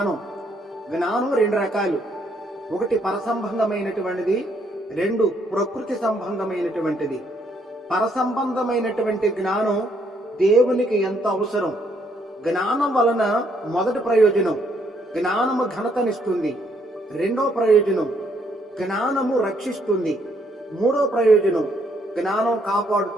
జ్ఞానం 2 రకాలు. ఒకటి పరసంబంధమైనటువంటిది, 2 ప్రకృతి సంబంధమైనటువంటిది. పరసంబంధమైనటువంటి జ్ఞానం దేవునికి ఎంత అవసరం. జ్ఞానం వలన మొదటి ప్రయోజనం జ్ఞానము ఘనతనిస్తుంది, 2వ ప్రయోజనం జ్ఞానము రక్షిస్తుంది, 3వ ప్రయోజనం జ్ఞానం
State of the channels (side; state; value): both; normal; correlation 0.70